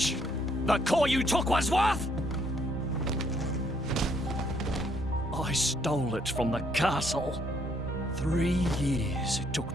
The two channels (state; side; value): normal; both; correlation 0.69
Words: the core you took was worth? I stole it from the castle. 3 years it took